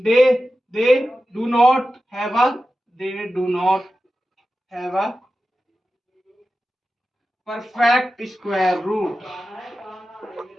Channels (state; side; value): normal; both; correlation 0.93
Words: do not have a perfect square root.